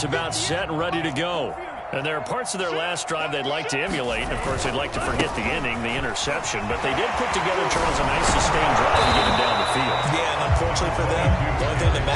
about set and ready to go. And there are parts of their last drive they'd like to emulate. And, of course, they'd like to forget the inning, the interception. But they did put together, Charles, a nice sustained drive to get him down the field. Yeah, and unfortunately for them, the only thing that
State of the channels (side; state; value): both; identical; correlation 1.00